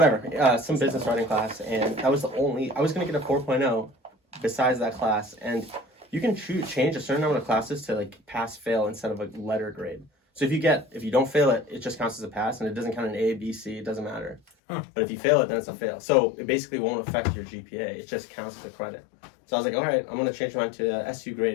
Some business writing class, and that was the only. I was gonna get a 4.0 besides that class, and you can change a certain number of classes to like pass fail instead of a letter grade. So if you don't fail it, it just counts as a pass, and it doesn't count an A, B, C. It doesn't matter. But if you fail it, then it's a fail. So it basically won't affect your GPA. It just counts as a credit. So I was like, all right, I'm gonna change mine to SU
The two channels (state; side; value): drops out; right; at 14.4 s